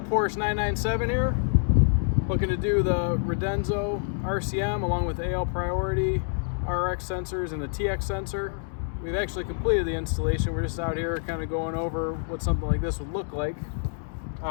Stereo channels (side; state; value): right; silent; digital silence